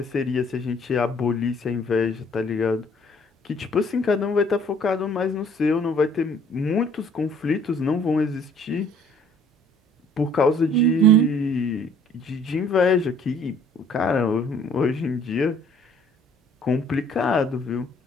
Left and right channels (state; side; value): normal; both; correlation 0.57